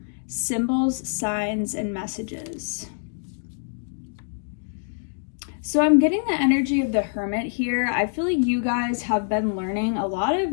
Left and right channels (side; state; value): right; silent; digital silence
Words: Symbols, Signs, and Messages. So I'm getting the energy of the Hermit here. I feel like you guys have been learning a lot